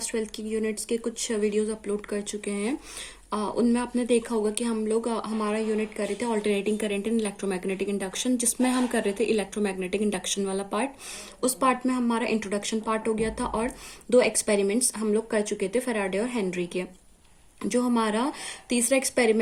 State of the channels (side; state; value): both; identical; correlation 1.00